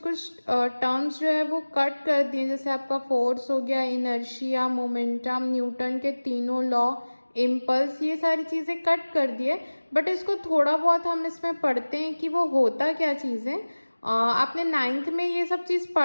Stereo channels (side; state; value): both; inverted; correlation -1.00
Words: टर्म्स जो है वो कट कर दिए, जैसे आपका फोर्स हो गया, इनर्शिया, मोमेंटम, न्यूटन के तीनों लॉ, इम्पल्स, ये सारी चीज़ें कट कर दिए। बट इसको थोड़ा बहुत हम इसमें पढ़ते हैं कि वो होता क्या चीज़ है। आपने 9th में ये सब चीज़